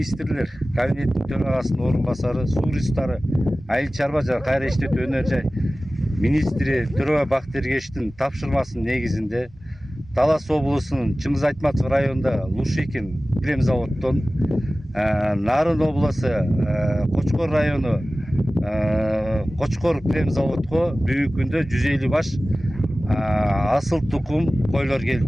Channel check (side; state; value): both; normal; correlation 0.97